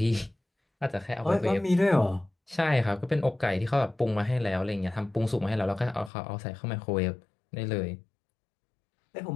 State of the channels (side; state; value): right; drops out; at 6.1 s